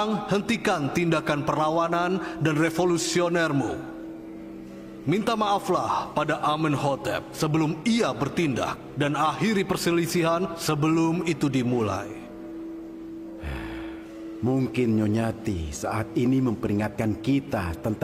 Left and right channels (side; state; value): both; identical; correlation 1.00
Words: hentikan tindakan perlawanan dan revolusionermu. Minta maaflah pada Amenhotep sebelum ia bertindak dan akhiri perselisihan sebelum itu dimulai. Mungkin Nyonyati saat ini memperingatkan kita